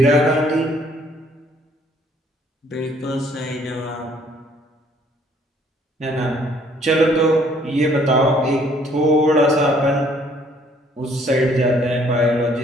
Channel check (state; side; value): normal; both; correlation 0.62